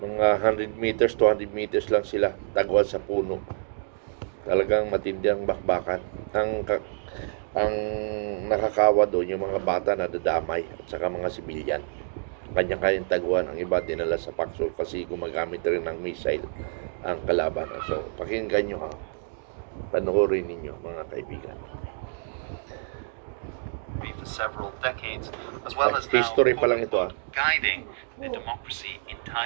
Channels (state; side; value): silent; left; 58 dB below the other